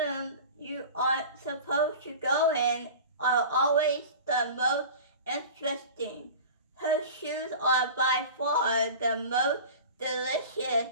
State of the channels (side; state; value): both; inverted; correlation -0.36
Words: you aren't supposed to go in are always the most interesting. Her shoes are by far the most delicious,